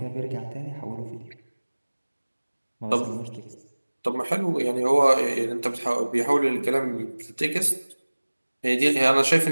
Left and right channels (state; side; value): inverted; both; correlation -1.00